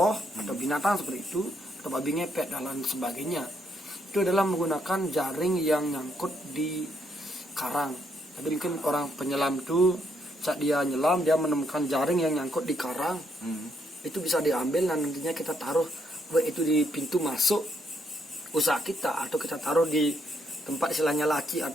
atau binatang seperti itu, atau babi ngepet dan lain sebagainya. Itu adalah menggunakan jaring yang nyangkut di karang. Jadi mungkin orang penyelam itu saat dia nyelam dia menemukan jaring yang nyangkut di karang, itu bisa diambil dan nantinya kita taruh baik itu di pintu masuk usaha kita atau kita taruh di tempat istilahnya laci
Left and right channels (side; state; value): both; normal; correlation 0.74